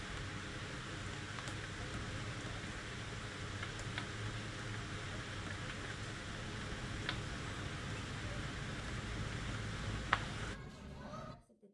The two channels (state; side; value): identical; both; correlation 1.00